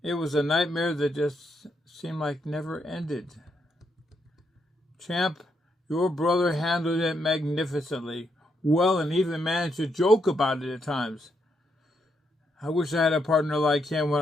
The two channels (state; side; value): normal; both; correlation 0.78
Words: It was a nightmare that just seemed like never ended. Champ, your brother handled it magnificently, well, and even managed to joke about it at times. I wish I had a partner like him when